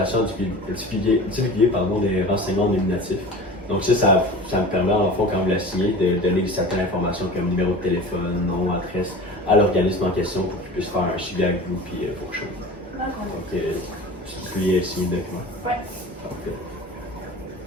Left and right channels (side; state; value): both; normal; correlation 0.37